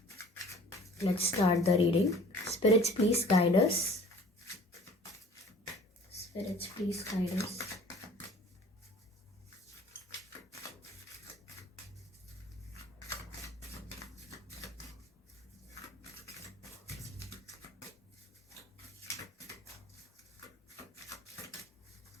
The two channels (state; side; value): normal; both; correlation 0.48